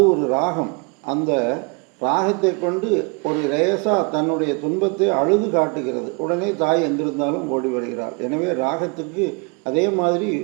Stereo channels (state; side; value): quieter; left; 32.5 dB